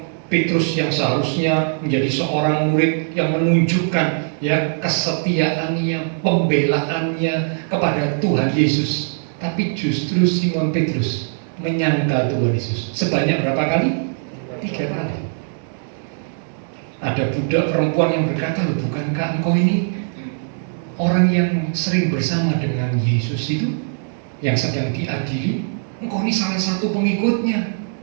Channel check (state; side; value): silent; left; digital silence